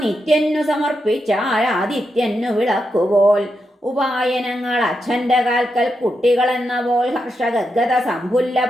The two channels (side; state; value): both; normal; correlation 0.85